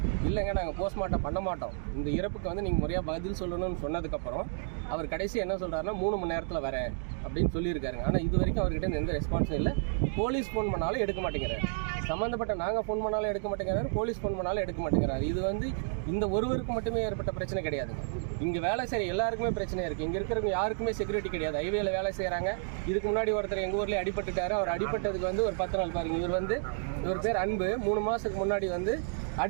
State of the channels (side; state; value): left; silent; digital silence